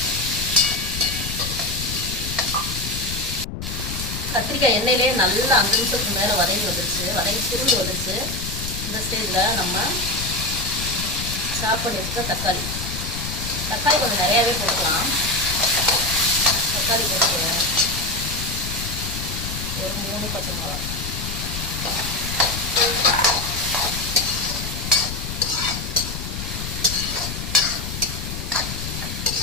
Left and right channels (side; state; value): left; noise; rumble, 6 dB below the sound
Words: கத்திரிக்காய் எண்ணெயிலே நல்லா 5 நிமிஷத்துக்கு மேலே வதங்கி வந்துருச்சு, வதங்கி சுருண்டு வந்துருச்சு. இந்த ஸ்டேஜில் நம்ம சாப் பண்ணி வச்சுக்க தக்காளி கொஞ்சம் நிறையாவே போட்டுக்கலாம். தக்காளி போட்டுக்குவேன். ஒரு 3 பச்சை மிளகா,